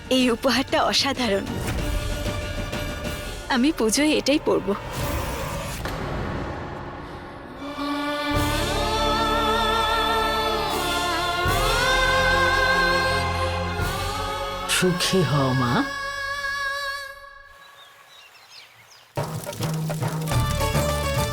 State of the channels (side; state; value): both; identical; correlation 1.00